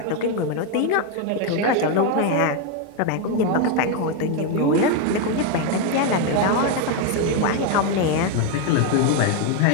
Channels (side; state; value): both; different; correlation 0.02